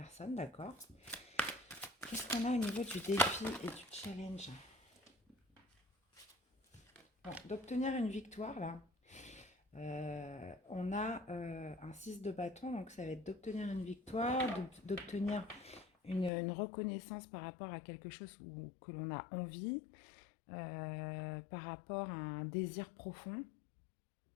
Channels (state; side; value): drops out; right; at 16.3 s